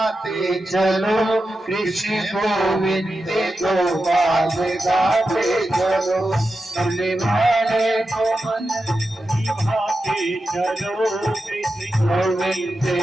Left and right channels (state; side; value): normal; both; correlation 0.90